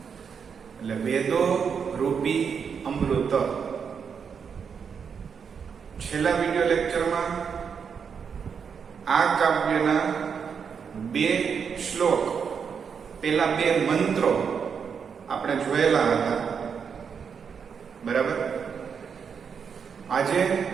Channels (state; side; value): quieter; left; 6.6 dB